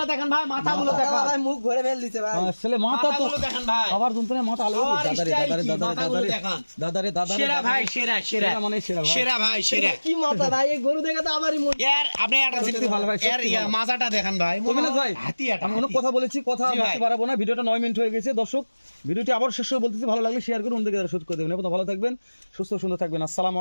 দেখেন ভাই, মাথাগুলো দেখান, ভাই মুখ ভরে ফেল দিছে ভাই। ছেলে মাথা তো মাথাগুলো দেখেন ভাই, আবার যন্ত্রণায় মাথা আলো আর দাদারে style দাদারে কি, দাদারে মাথাগুলো দাদারে দেখান। দাদারে দাদারে সেরা ভাই, সেরা সেরা সেরা মানে সেরা ভাই। সেরা ভাই, সেরা। কি মাথা ভাই, এই গরু দেখে তো আমারই মন। এর আপনি একটা সত্যি ভালো ভাই, এর সত্যি ভালো। মাজাটা দেখেন ভাই, তো মিনাজ ভাই, হাতি এটা, আমি অনেক হাতি। কথা বলেছি, কথা জি ভাই। বলতে পারবো না, ভিডিওটা 9 মিনিট হয়ে গেছে। দর্শক, ভিডিওটি আবার শেষ করে বলতেছি, ভালো লাগলে শেয়ার করুন, অন্যদিকে শুট করে দেবেন। ভালো থাকবেন, সুস্থ সুন্দর থাকবেন। আসসালামু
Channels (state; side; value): inverted; both; correlation -1.00